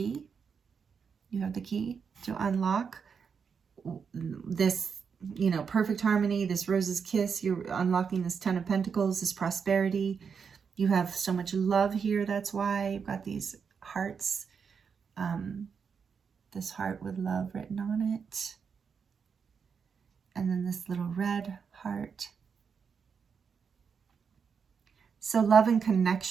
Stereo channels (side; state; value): left; quieter; 6.2 dB